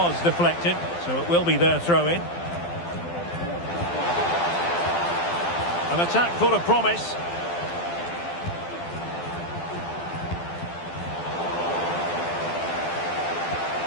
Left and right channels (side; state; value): right; late; 12 ms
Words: deflected, so it will be their throw-in. An attack full of promise.